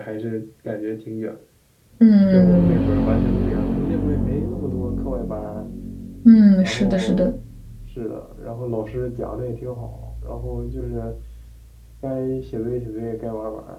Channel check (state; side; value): identical; both; correlation 1.00